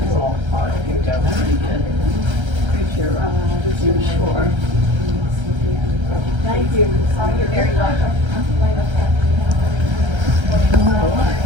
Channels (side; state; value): left; late; 1.3 ms